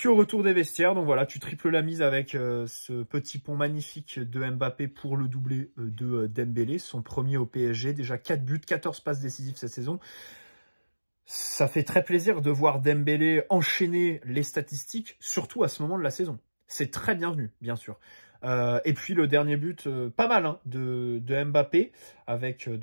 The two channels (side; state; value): both; inverted; correlation -1.00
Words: au retour des vestiaires, donc voilà, tu triples la mise avec ce petit pont magnifique de Mbappé pour le doublé de Dembélé, son premier au PSG, déjà 4 buts, 14 passes décisives cette saison. Ça fait très plaisir de voir Dembélé enchaîner les statistiques, surtout à ce moment de la saison. C'est très bienvenu, bien sûr. Et puis le dernier but, pas mal de Mbappé, avec